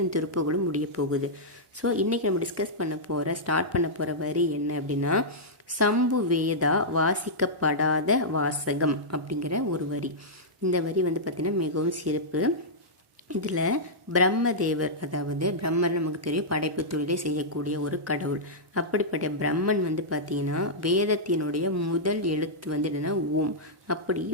இந்த திருப்புகளும் முடிய போகுது. ஸோ இன்றைக்கி நம்ம ஸ்டார்ட் பண்ண போகிற வரி என்ன அப்படின்னா, சம்பு வேதா வாசிக்கப்படாத வாசகம் அப்படிங்கிற ஒரு வரி. இந்த வரி பார்த்திங்கன்னா மிகவும் சிறப்பு. இதில் பிரம்மதேவர், அதாவது பிரம்மன் நமக்கு தெரியும், படைப்பு தொழிலை செய்யக்கூடிய ஒரு கடவுள். அப்படிப்பட்ட பிரம்மன் பார்த்திங்கன்னா வேதத்தினுடைய முதல் எழுத்து என்னென்னா ஓம். அப்படி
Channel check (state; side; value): normal; both; correlation -0.10